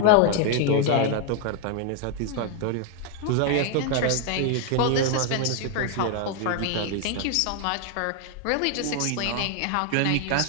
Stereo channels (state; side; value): different; both; correlation 0.00